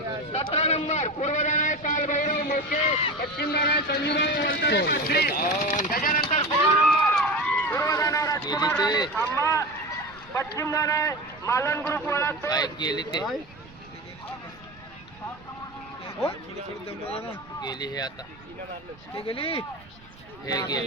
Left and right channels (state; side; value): noise; right; rumble, 23 dB below the sound